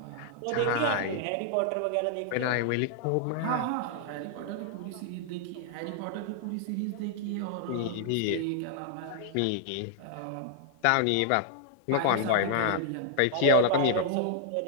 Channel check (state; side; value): different; both; correlation -0.01